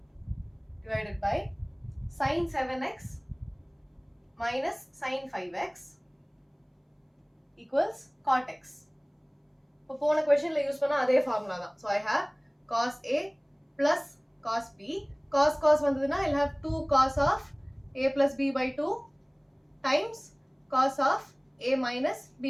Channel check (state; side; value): identical; both; correlation 1.00